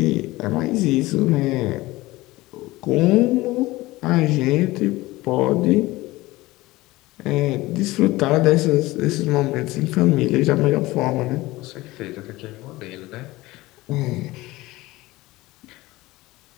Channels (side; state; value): right; quieter; 19.4 dB